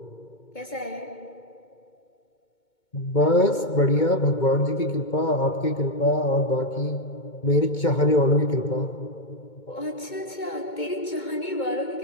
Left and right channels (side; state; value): right; late; 2.2 ms